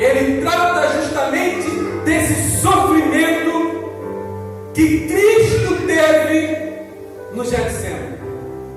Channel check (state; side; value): identical; both; correlation 1.00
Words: trata justamente desse sofrimento que Cristo teve no Getsemane.